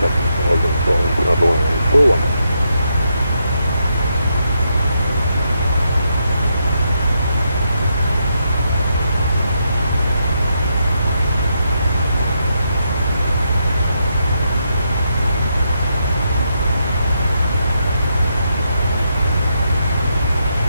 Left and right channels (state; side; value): inverted; both; correlation -0.81